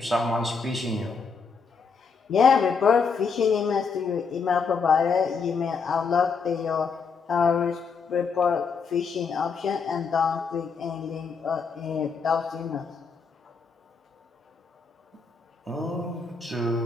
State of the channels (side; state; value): right; quieter; 5.3 dB